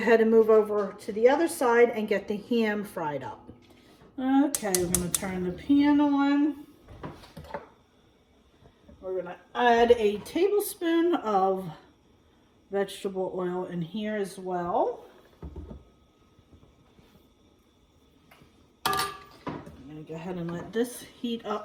and move over to the other side and get the ham fried up. Okay, we're gonna turn the pan on. We're gonna add a tablespoon of vegetable oil in here as well. I'm gonna go ahead and let this heat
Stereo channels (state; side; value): identical; both; correlation 1.00